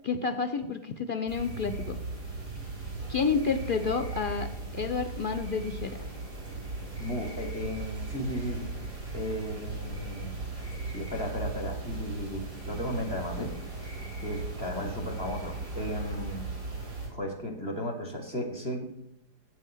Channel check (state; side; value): late; left; 4.9 ms